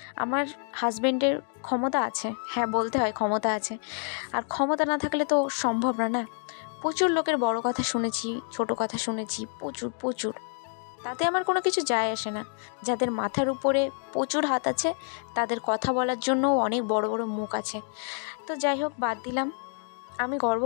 আমার হাজব্যান্ডের ক্ষমতা আছে, হ্যাঁ বলতে হয় ক্ষমতা আছে, আর ক্ষমতা না থাকলে তো সম্ভব না। প্রচুর লোকের বড় কথা শুনেছি, ছোট কথা শুনেছি, প্রচুর প্রচুর, তাতে আমার কোনো কিছু যায় আসে না। যাদের মাথার উপরে প্রচুর হাত আছে তাদের কথা বলার জন্যও অনেক বড় বড় মুখ আছে। তো যাই হোক, বাদ দিলাম। আমি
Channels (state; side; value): silent; right; 55 dB below the other